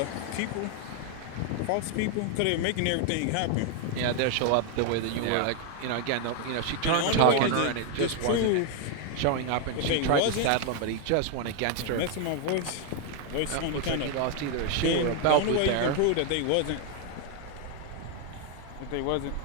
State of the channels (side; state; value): both; different; correlation 0.01